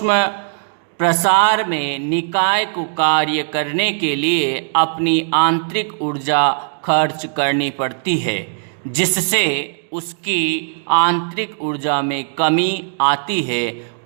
प्रसार में निकाय को कार्य करने के लिए अपनी आंतरिक ऊर्जा खर्च करनी पड़ती है, जिससे उसकी आंतरिक ऊर्जा में कमी आती है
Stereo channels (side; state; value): left; silent; digital silence